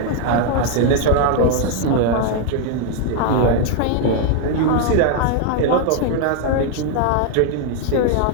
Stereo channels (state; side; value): different; both; correlation 0.00